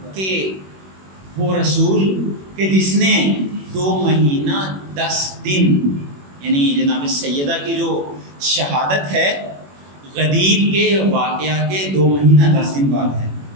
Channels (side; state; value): left; late; 21 ms